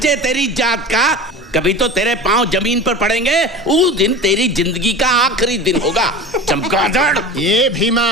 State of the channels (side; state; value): both; normal; correlation 0.33